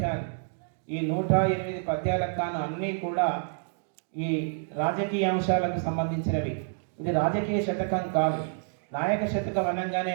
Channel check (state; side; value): silent; left; digital silence